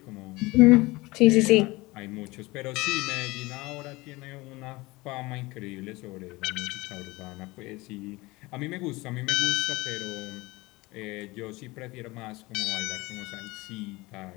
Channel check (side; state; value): right; quieter; 21.9 dB